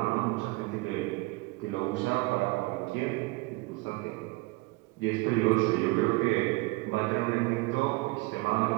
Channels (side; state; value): left; quieter; 23.6 dB